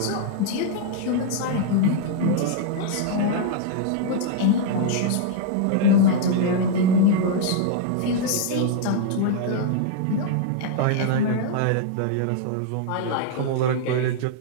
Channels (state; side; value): different; both; correlation -0.01